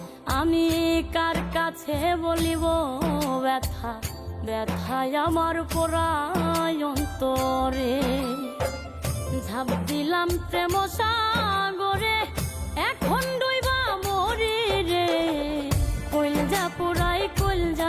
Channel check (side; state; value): both; identical; correlation 1.00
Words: আমি কার কাছে বলিব ব্যথা, ব্যথায় আমার পুরায় অন্তরে। ঝাঁপ দিলাম প্রেম সাগরে, এখন ডুইবা মরি রে। কইলজা পুরাই